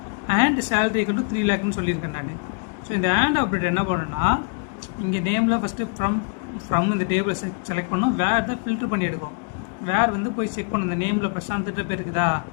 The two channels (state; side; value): quieter; right; 37.1 dB